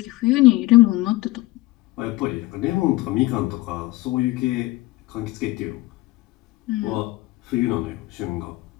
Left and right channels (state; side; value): quieter; right; 19.4 dB